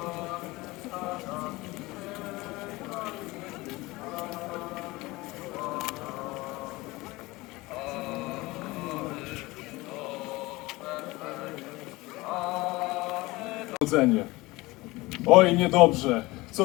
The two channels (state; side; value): quieter; right; 21.3 dB